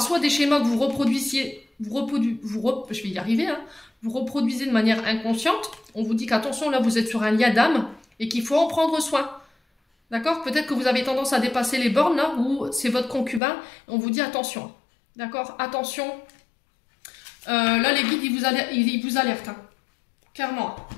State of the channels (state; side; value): drops out; right; at 13.4 s